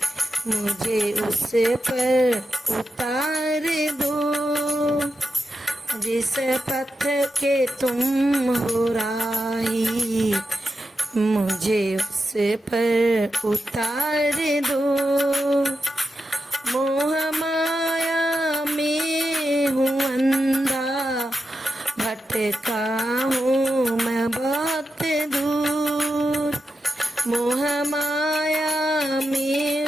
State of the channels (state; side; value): normal; both; correlation 0.88